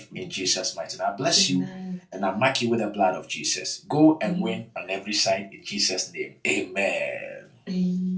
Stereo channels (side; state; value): both; identical; correlation 1.00